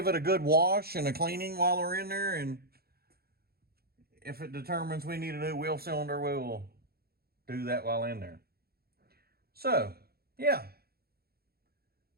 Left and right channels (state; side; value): late; left; 0.45 ms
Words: it a good wash and a cleaning while we're in there, and if it determines we need a new wheel cylinder, we will do that while in there. So, yeah,